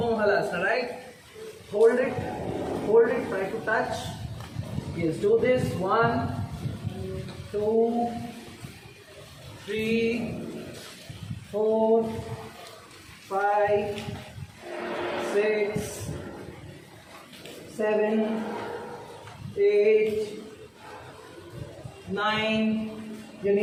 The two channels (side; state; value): both; identical; correlation 1.00